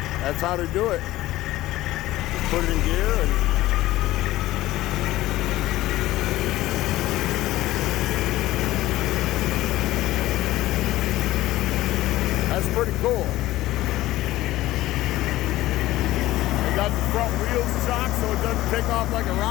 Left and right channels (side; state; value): right; quieter; 16.3 dB